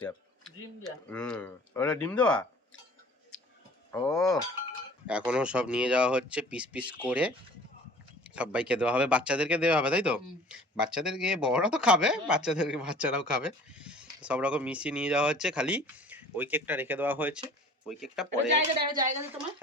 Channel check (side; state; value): both; normal; correlation 0.47